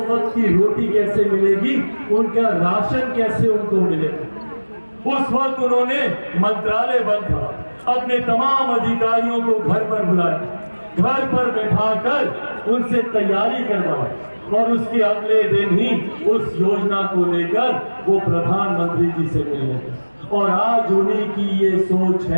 वक्त की रोटी कैसे मिलेगी, उनका राशन कैसे उनको मिलेगा। उस वक्त उन्होंने मंत्रालय बंद था, अपने तमाम अधिकारियों को घर पर बुलाया, घर पर बैठाकर उनसे तैयारी करवाई और उसके अगले दिन ही उस योजना को लेकर वो प्रधानमंत्री जी से मिले। और आज उन्हीं की ये सोच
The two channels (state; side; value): inverted; both; correlation -1.00